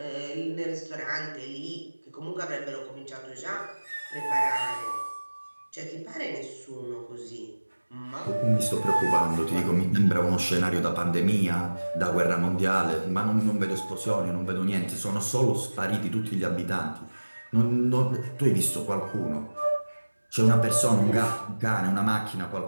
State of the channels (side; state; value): both; inverted; correlation -1.00